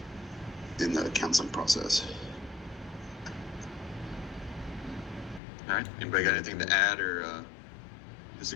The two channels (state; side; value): drops out; right; at 5.4 s